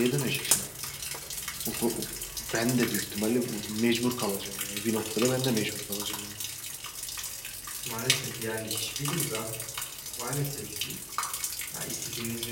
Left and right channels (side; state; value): both; identical; correlation 1.00